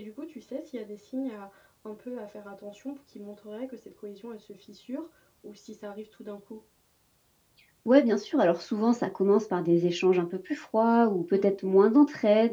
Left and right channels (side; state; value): both; identical; correlation 1.00